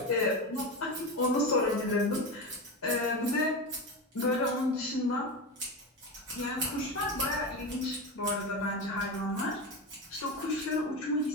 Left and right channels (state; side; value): normal; both; correlation 0.20